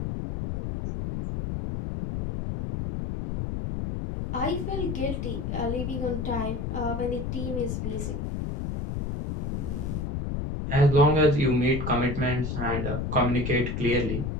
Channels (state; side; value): noise; left; rumble, 3 dB below the sound